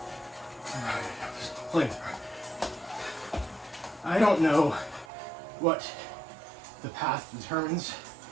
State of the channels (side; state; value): left; drops out; at 5.1 s